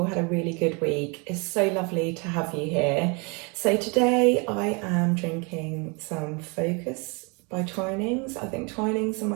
had a really good week. It's so lovely to have you here. So today I am drinking some Focus by Twinings. I think Twinings are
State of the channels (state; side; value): quieter; left; 31.4 dB